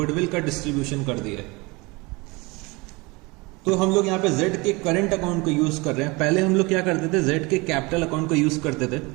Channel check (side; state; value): left; quieter; 25.3 dB